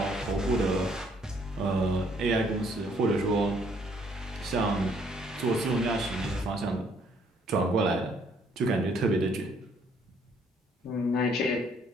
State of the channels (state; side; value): normal; both; correlation 0.66